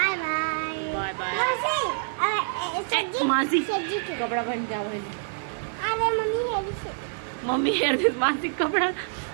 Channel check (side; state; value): left; silent; 61 dB below the other